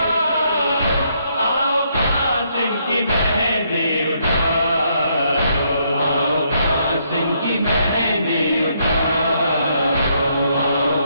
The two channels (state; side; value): inverted; both; correlation -0.73